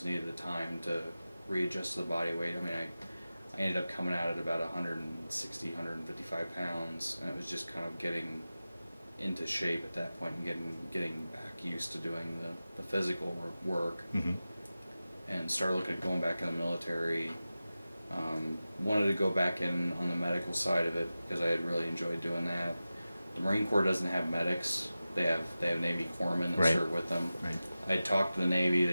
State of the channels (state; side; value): inverted; both; correlation -0.95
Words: needed the time to readjust to the body weight. I mean, I ended up coming out at about 160, 155 pounds, and it was just kind of getting into shape at that point and getting back used to doing the physical work. And started looking at going back in the military. Wanted to go back in on the medical side of it, because I had really enjoyed doing that. The Marine Corps doesn't have medics. They have Navy corpsmen that serve with them. I talked to the Navy.